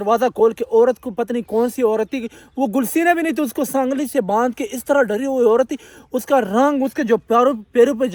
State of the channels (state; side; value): identical; both; correlation 1.00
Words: खोल के, औरत को पता नहीं कौन सी औरत थी, वो गुलसीना भी नहीं थी, उसको सांगली से बांध के इस तरह डरी हुई औरत थी। उसका रंग, उसके जो पैरों पे